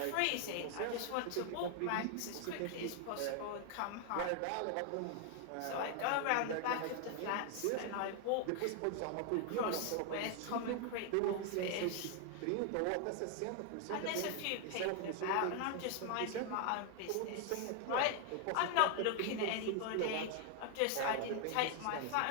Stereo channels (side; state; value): both; different; correlation 0.00